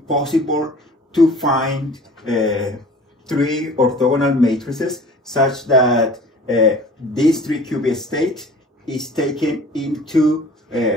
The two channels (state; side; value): normal; both; correlation 0.45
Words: to find 3 orthogonal matrices such that this 3-qubit state is taken into